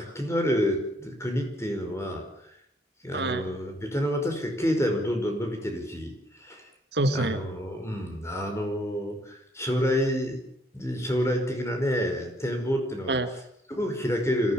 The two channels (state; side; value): normal; both; correlation 0.67